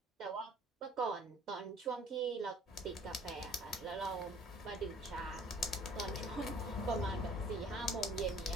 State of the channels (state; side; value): normal; both; correlation 0.53